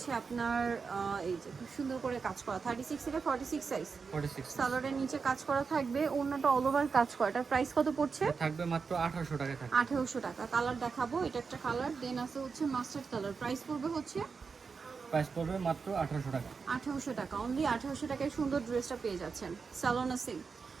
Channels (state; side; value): quieter; left; 5.2 dB